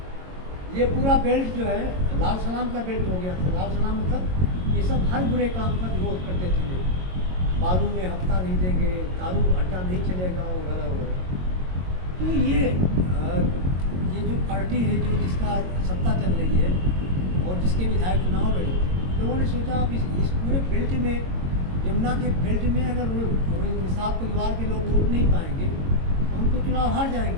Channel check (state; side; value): late; left; 22 ms